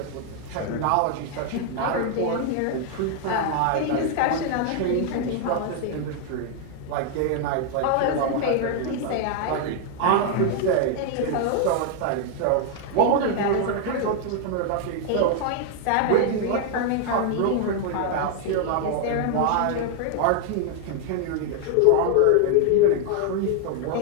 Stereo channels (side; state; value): both; different; correlation 0.00